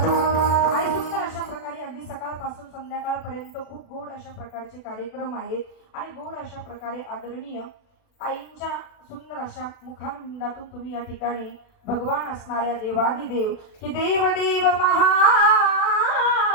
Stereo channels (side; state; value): right; late; 36 ms